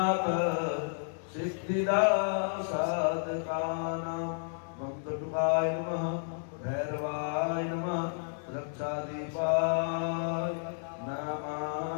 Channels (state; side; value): silent; right; 57 dB below the other